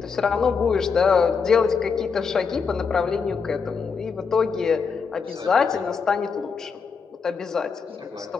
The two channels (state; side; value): quieter; right; 5.6 dB